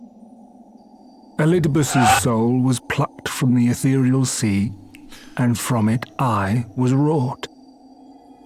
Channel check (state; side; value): identical; both; correlation 1.00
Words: Elidibus's soul was plucked from the ethereal sea, and from it I was wrought.